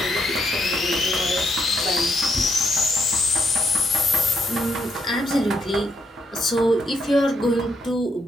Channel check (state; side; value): normal; both; correlation 0.76